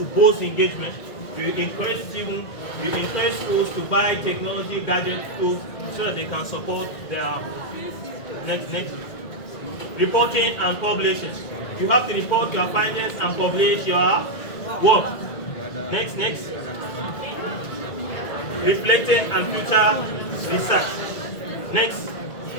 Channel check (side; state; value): right; late; 1.9 ms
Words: boost engagement. You encourage students, you encourage schools to buy technology gadget tools so that they can support their next. Reporting and publishing. You have to report your findings and publish your work. Next. Reflecting and future research. Next.